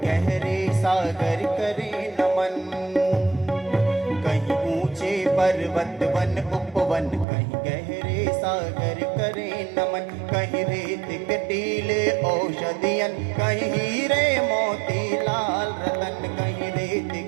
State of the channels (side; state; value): left; drops out; at 7.2 s